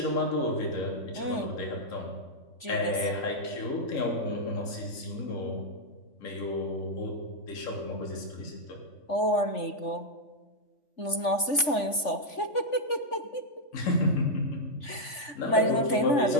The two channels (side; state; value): right; late; 3.5 ms